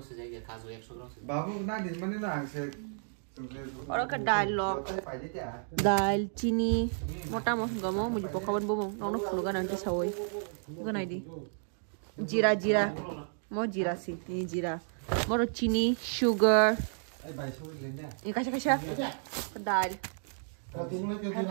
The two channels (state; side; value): silent; left; digital silence